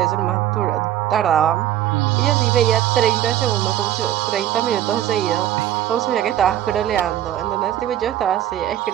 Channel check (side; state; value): left; quieter; 12.2 dB